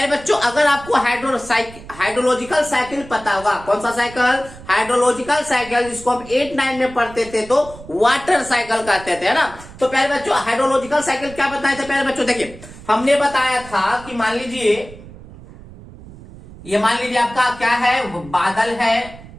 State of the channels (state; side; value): noise; right; rumble, 18 dB below the sound